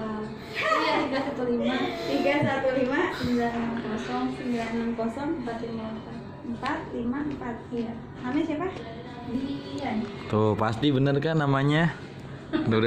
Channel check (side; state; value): both; identical; correlation 1.00